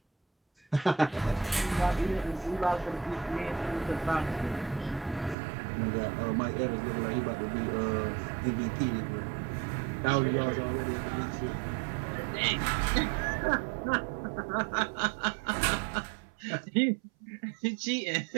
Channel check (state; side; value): drops out; left; at 5.4 s